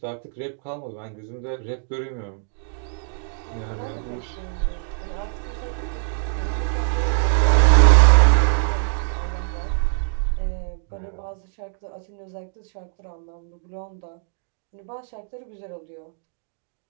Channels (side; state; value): left; silent; digital silence